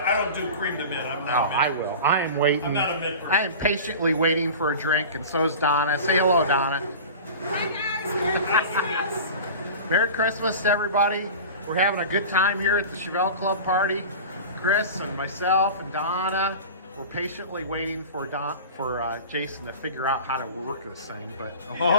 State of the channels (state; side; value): inverted; both; correlation -0.34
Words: don't do cream to mint. I'm not. Oh, I will. I am waiting. I'm not a mint person. I am patiently waiting for a drink, and so is Donna. Say hello, Donna. Hi guys, Merry Christmas. Merry Christmas to everybody. We're having a good time here at the Chevelle Club party. Chris and myself and Donna. We're patiently waiting for Jason to figure out how to work this thing, but